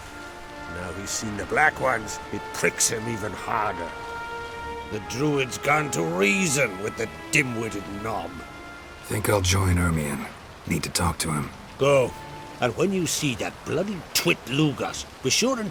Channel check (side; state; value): both; identical; correlation 1.00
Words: he's seen the Black Ones, it pricks him even harder. The Druid's gone to reason with the dim-witted knob. Think I'll join Ermion. Need to talk to him. Go. And when you see that bloody twit Lugas, be sure